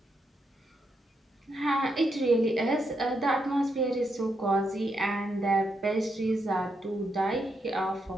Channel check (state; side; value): normal; both; correlation 0.81